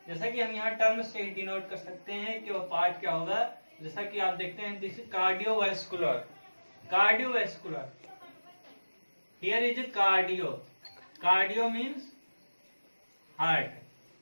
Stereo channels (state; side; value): inverted; both; correlation -1.00